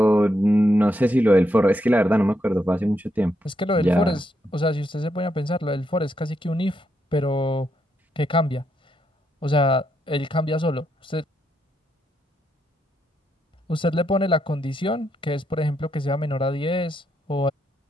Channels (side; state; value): both; normal; correlation 0.79